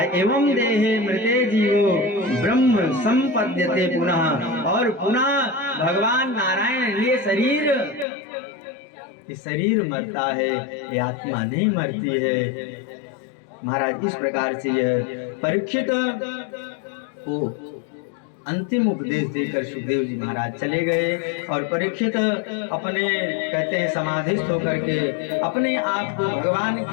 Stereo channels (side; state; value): right; drops out; at 8.1 s